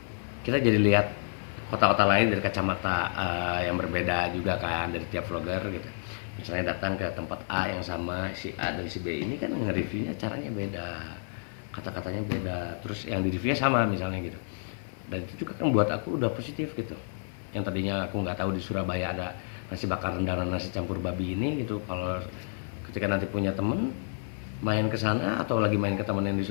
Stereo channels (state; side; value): silent; right; 55 dB below the other